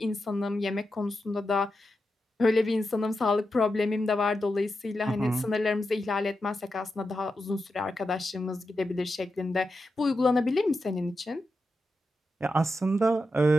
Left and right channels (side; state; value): both; normal; correlation 0.89